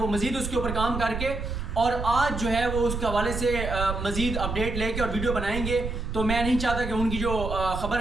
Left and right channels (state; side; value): noise; right; rumble, 5 dB below the sound